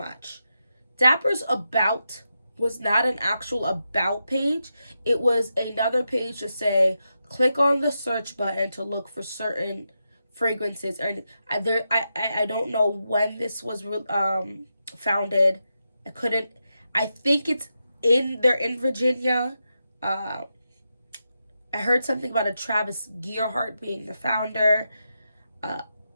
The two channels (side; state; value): both; inverted; correlation -0.87